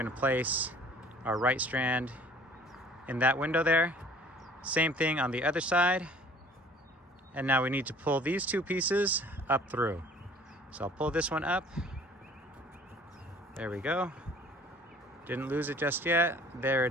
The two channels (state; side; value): normal; both; correlation 0.51